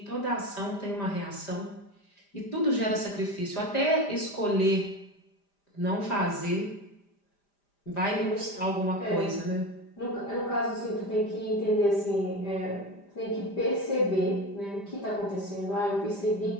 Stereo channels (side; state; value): right; late; 5.0 ms